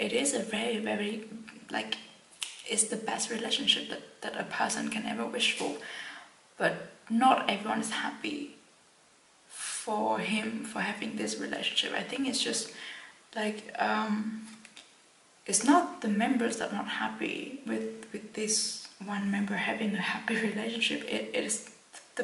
is a very, very, like, it's the best relationship that a person can ever wish for. But not everyone is happy for him for having this relationship. I think it's just like it's not the members that are not happy with this one member having a happy relationship. It is the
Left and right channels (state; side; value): identical; both; correlation 1.00